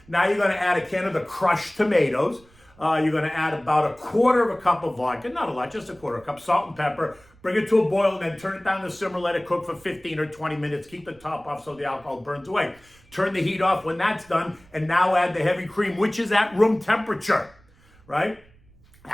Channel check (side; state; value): right; noise; rumble, 28 dB below the sound